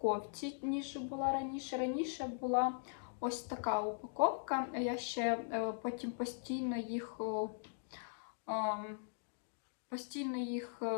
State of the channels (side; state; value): right; silent; digital silence